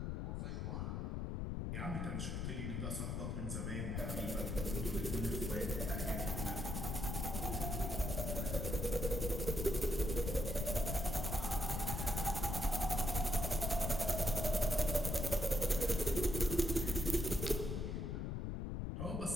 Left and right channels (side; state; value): left; noise; rumble, 2 dB below the sound